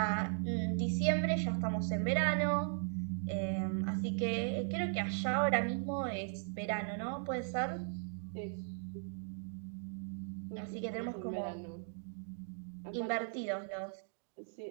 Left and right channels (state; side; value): silent; left; digital silence